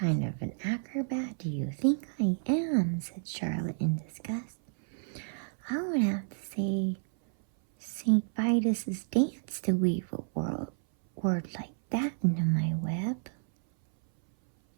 of an acrobat do you think I am? Said Charlotte in disgust. I would have to say St. Vitus's dance to weave a word like that into my web.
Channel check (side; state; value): left; silent; 57 dB below the other